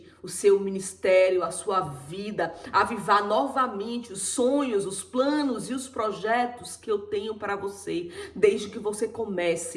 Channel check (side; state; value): both; identical; correlation 1.00